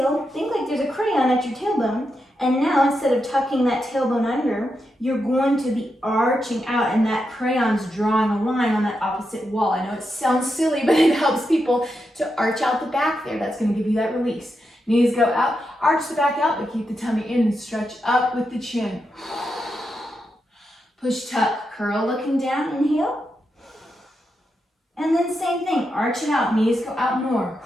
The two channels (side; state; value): both; normal; correlation 0.86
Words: think like there's a crayon at your tailbone. And now, instead of tucking that tailbone under, you're going to be arching out, and that crayon's drawing a line on that opposite wall. I know it sounds silly, but it helps people to arch out the back there. That's going to give you that release. Knees go out, arch the back out, but keep the tummy in and stretch up with the chin. Push, tuck, curl, looking down, inhale. And then same thing, arch it out, knees go out more.